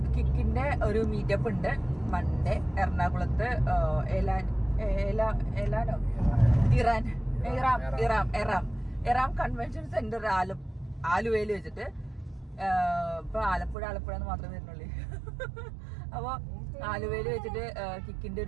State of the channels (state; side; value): drops out; left; at 13.8 s